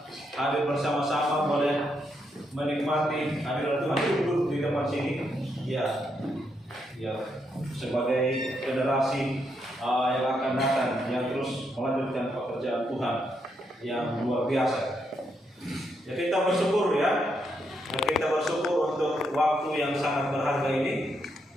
hadir bersama-sama, boleh menikmati hadirat Tuhan. Duduk di depan sini. Ya, sebagai generasi yang akan datang, yang terus melanjutkan pekerjaan Tuhan yang luar biasa. Ya, kita bersyukur ya. Kita bersyukur untuk waktu yang sangat berharga ini.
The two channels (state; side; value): normal; both; correlation 0.79